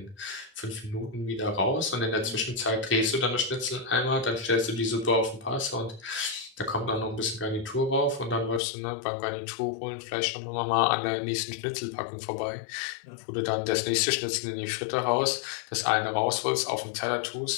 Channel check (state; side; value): drops out; right; at 8.6 s